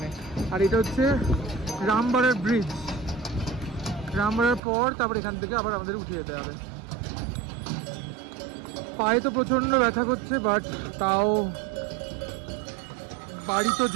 আর এটা হচ্ছে রামবাড়ার ব্রিজ, রামবাড়ার পর তারপর এখান থেকে আবার আমাদের উঠে যেতে হবে। পায়ে তো প্রচন্ড ব্যথা করছে, বাট তাও বাড়ি তো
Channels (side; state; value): left; drops out; at 4.6 s